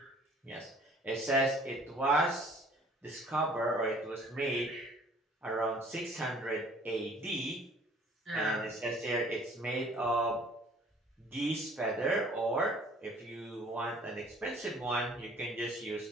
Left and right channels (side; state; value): both; normal; correlation 0.54